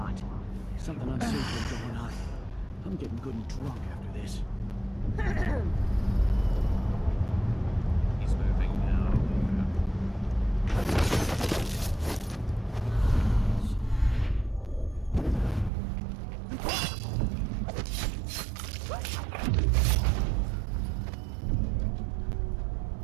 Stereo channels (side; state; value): left; drops out; at 15.7 s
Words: Something unsavory going on. I'm getting good and drunk after this. He's moving now.